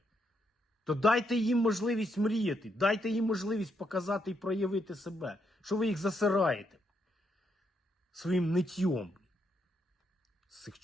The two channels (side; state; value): both; normal; correlation 0.77